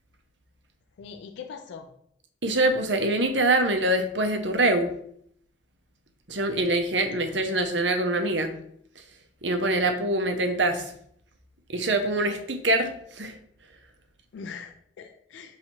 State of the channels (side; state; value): both; normal; correlation 0.07